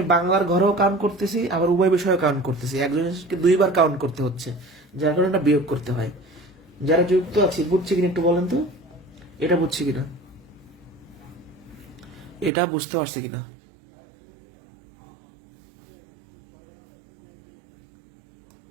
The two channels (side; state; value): left; drops out; at 12.5 s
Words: বাংলার ঘরেও কাউন্ট করতেছি, আবার উভয় বিষয়েও কাউন্ট করতেছি, একজনকে দুইবার কাউন্ট করতে হচ্ছে, যার কারণে এটা বিয়োগ করতে হয়। যারা যুক্ত আছে বুঝছে কিনা একটু বলেন তো, এটা বুঝছে কিনা, এটা বুঝতে পারছে কিনা?